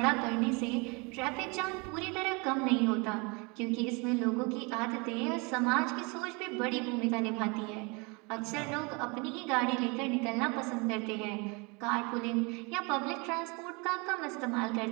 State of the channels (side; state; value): left; quieter; 29.6 dB